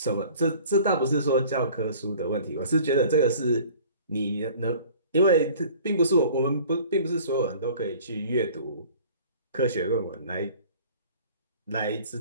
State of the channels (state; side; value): inverted; both; correlation -0.48